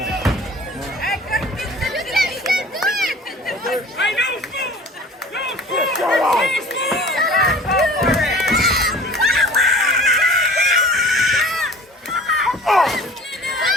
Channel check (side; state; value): both; normal; correlation 0.44